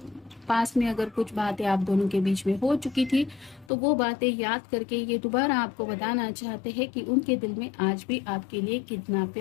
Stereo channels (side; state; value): right; drops out; at 3.7 s